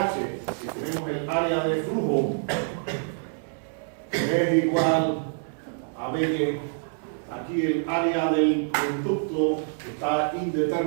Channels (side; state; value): left; silent; digital silence